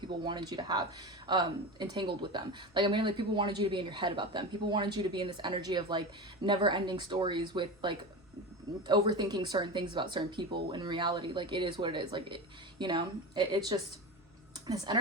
wanted you to have entangled with them. Like I mean, like people wanted you to be in your head about them. People wanted you to be in this energy of like never ending stories with like overthinking certain things about certain people. In reality, like it is what it is. Like it, you know, it's just this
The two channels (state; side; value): normal; both; correlation 0.25